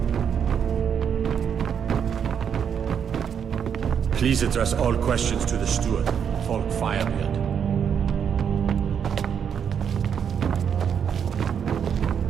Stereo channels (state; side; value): quieter; left; 7.7 dB